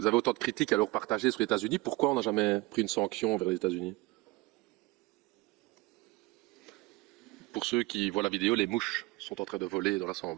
avez autant de critiques à leur partager sur les États-Unis, pourquoi on n'a jamais pris une sanction vers les États-Unis? Pour ceux qui voient la vidéo, les mouches sont en train de voler dans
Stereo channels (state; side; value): quieter; left; 22.5 dB